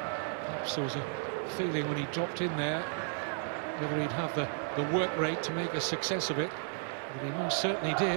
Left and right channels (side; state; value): left; silent; 55 dB below the other